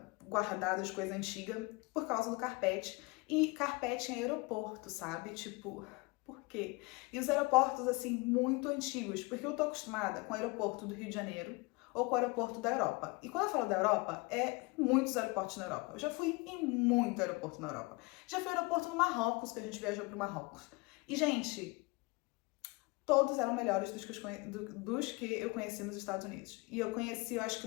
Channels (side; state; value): right; quieter; 26.1 dB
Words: guardada, de coisa antiga, por causa do carpete. E carpete em aeroporto, sabe? Tipo, por quê? E os aeroportos, assim, muito antigos. Porque eu tô acostumada com o aeroporto do Rio de Janeiro ou com o aeroporto da Europa. E quando eu falo da Europa, muitos aeroportos na Europa. Eu já fui em muito aeroporto na Europa. Já fui aeroporto no Marrocos, que a gente viajou pro Marrocos. E, gente, todos eram melhores dos que eu conheci nos Estados Unidos. E eu conheci, eu acho